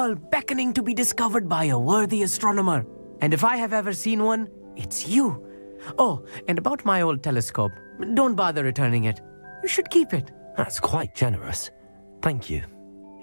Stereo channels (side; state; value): both; inverted; correlation -1.00